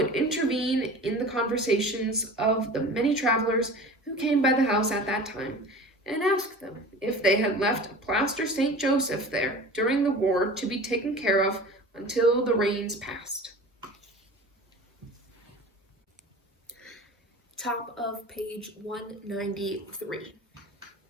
intervene in the conversations of the many travelers who came by the house at that time, and ask them if they had left a plaster St. Joseph there during the war to be taken care of until the rains passed. Top of page 193.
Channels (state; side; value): normal; both; correlation 0.37